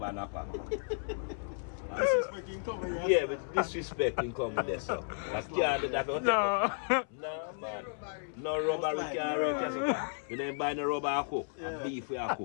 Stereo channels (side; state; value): right; silent; 55 dB below the other